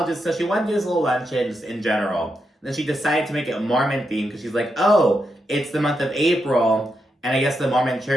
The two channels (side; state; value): both; normal; correlation 0.84